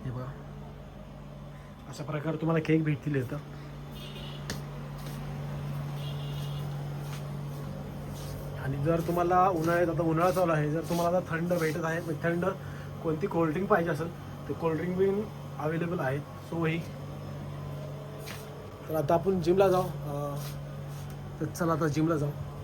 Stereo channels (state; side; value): identical; both; correlation 1.00